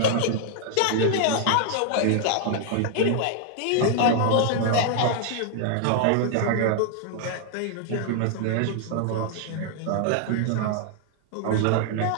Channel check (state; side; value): different; both; correlation 0.00